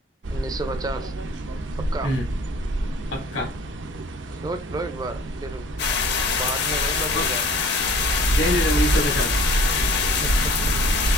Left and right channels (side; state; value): both; normal; correlation 0.50